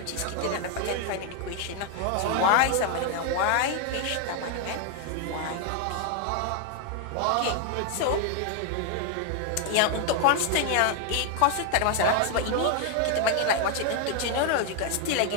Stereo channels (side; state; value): both; different; correlation 0.00